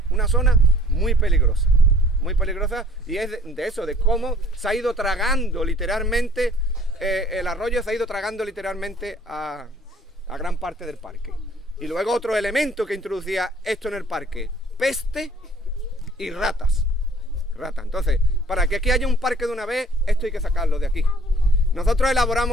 una zona muy peligrosa, y es de eso, de cómo se ha ido tragando literalmente, el arroyo se ha ido tragando literalmente a gran parte del parque. Y luego otro elemento que introducía esto en el parque, peste y ratas. Entonces, para que aquí haya un parque de una vez, esto hay que sacarlo de aquí. Nosotros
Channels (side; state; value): both; normal; correlation 0.55